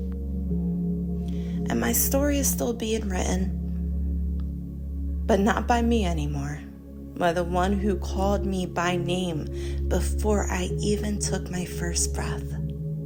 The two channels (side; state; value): both; identical; correlation 1.00